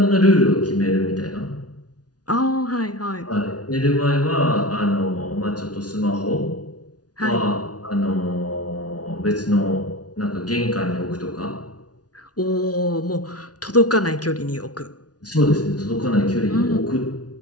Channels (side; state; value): right; late; 0.69 ms